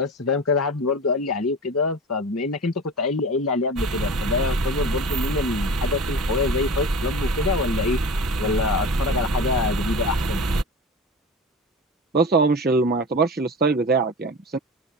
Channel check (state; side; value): normal; both; correlation 0.32